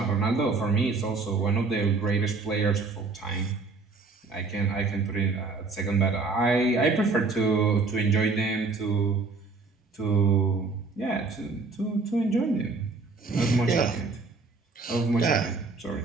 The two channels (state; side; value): quieter; left; 4.0 dB